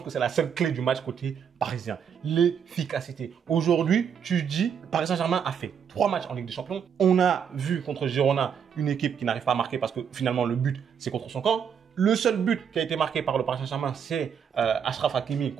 que c'est la seule clé du match côté parisien. L'efficacité. Aujourd'hui, tu dis, Paris Saint-Germain a fait 3 matchs en Ligue des Champions. On a vu contre Girona une équipe qui n'arrive pas à marquer parce que finalement, le but, c'est contre son camp. Le seul but qui a été marqué par le Paris Saint-Germain, c'est Achraf Hakimi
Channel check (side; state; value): left; quieter; 7.6 dB